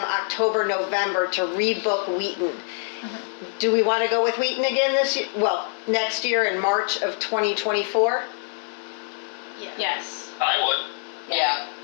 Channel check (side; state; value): right; silent; 62 dB below the other